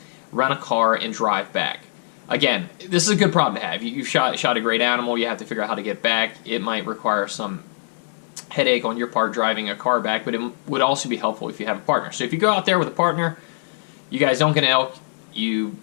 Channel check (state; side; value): silent; right; digital silence